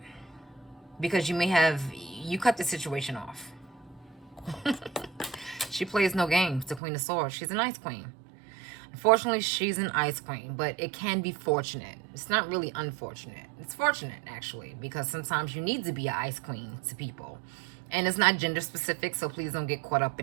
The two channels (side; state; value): left; drops out; at 6.8 s